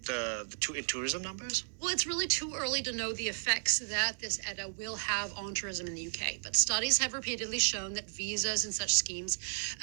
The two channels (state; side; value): silent; left; digital silence